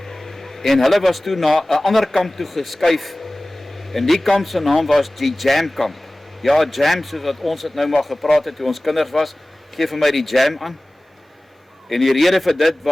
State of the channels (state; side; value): normal; both; correlation 0.98